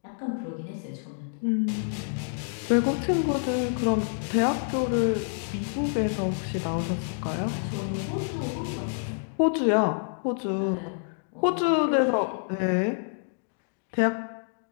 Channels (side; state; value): right; silent; digital silence